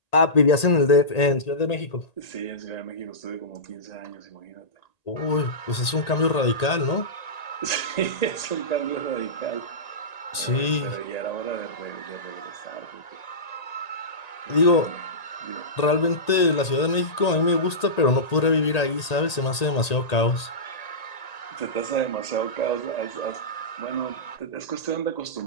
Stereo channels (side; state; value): right; late; 1.8 ms